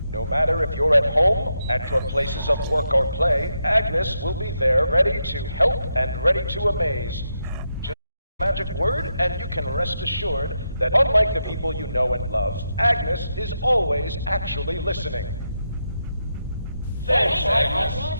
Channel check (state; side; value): inverted; both; correlation -0.84